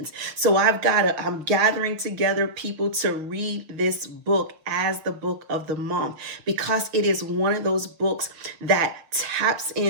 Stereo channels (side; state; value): left; late; 6.4 ms